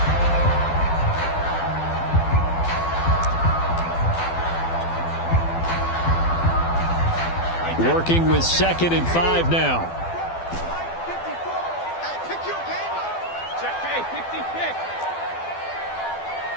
Working with 2nd and 5 now.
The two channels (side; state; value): right; late; 12 ms